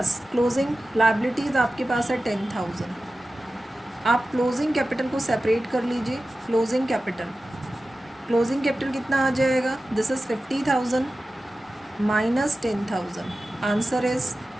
क्लोजिंग लायबिलिटीज़ आपके पास है 10,000। आप क्लोजिंग कैपिटल को सेपरेट कर लीजिए। क्लोजिंग कैपिटल क्लोजिंग कैपिटल कितना आ जाएगा, this is 50,000 minus 10,000, answer is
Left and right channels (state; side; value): normal; both; correlation 0.95